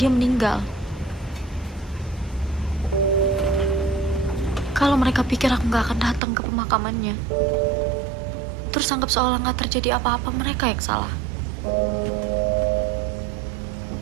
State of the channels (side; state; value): left; drops out; at 6.2 s